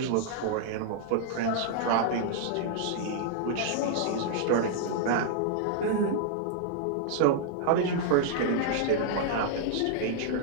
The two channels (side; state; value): both; different; correlation -0.01